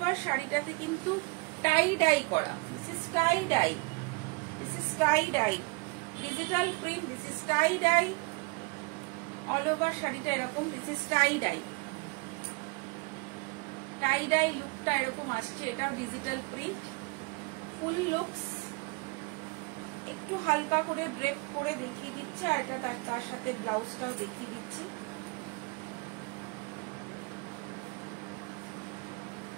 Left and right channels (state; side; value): quieter; left; 28.5 dB